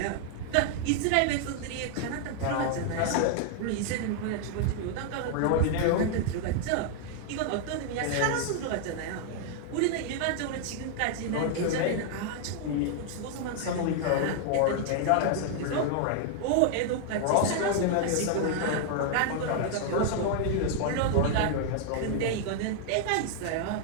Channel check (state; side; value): different; both; correlation 0.00